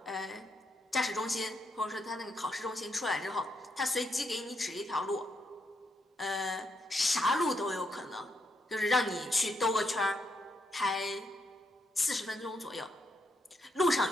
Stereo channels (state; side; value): normal; both; correlation 0.79